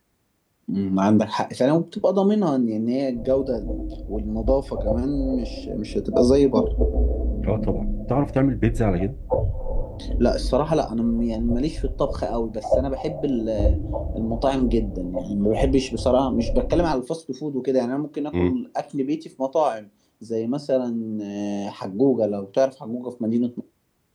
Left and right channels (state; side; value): identical; both; correlation 1.00